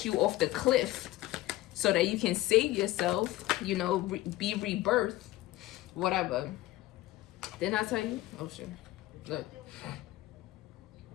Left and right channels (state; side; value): quieter; right; 16.7 dB